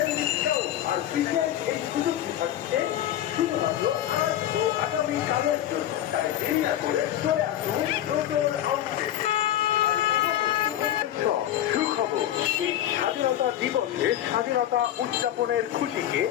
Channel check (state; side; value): quieter; right; 12.0 dB